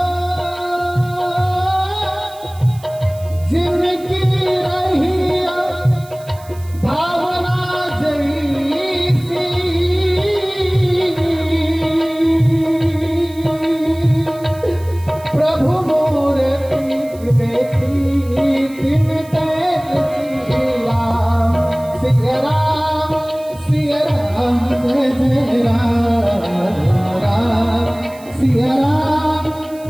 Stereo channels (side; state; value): right; noise; hiss, 23 dB below the sound